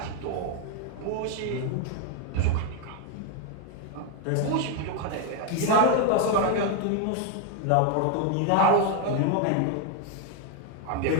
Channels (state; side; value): different; both; correlation 0.01